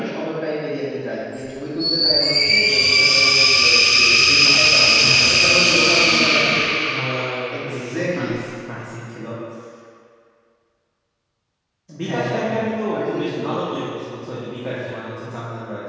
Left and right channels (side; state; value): both; identical; correlation 1.00